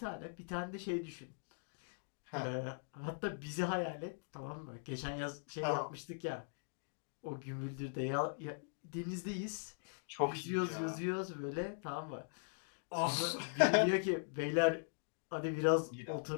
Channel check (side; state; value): right; silent; digital silence